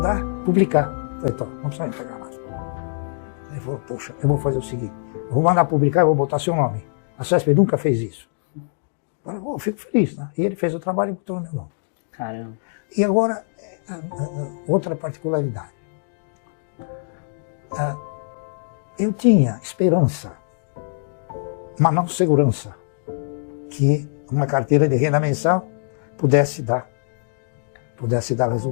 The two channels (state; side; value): silent; right; digital silence